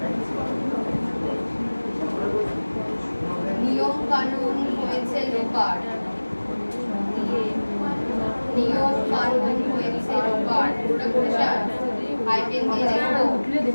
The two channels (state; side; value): inverted; both; correlation -1.00